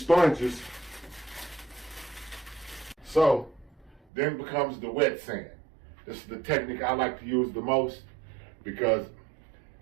sponges, so then becomes the wet sand. This is the technique I like to use the most because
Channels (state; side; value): drops out; left; at 4.0 s